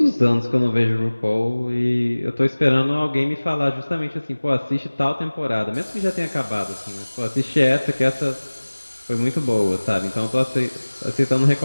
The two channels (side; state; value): both; inverted; correlation -1.00